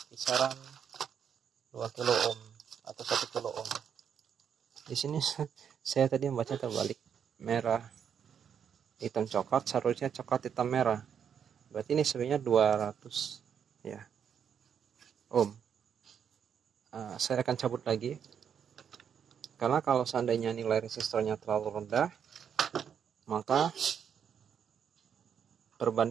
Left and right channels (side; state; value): left; quieter; 7.9 dB